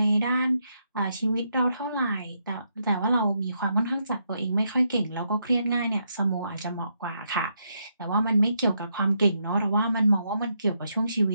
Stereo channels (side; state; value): both; inverted; correlation -0.79